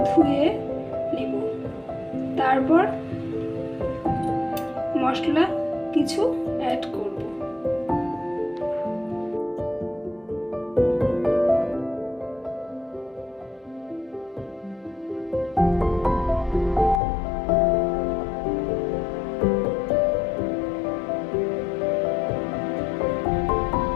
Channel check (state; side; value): drops out; right; at 17.0 s